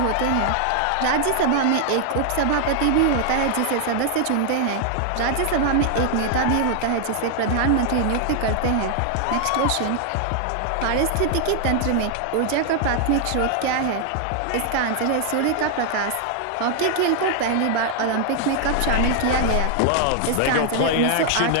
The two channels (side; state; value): both; different; correlation 0.00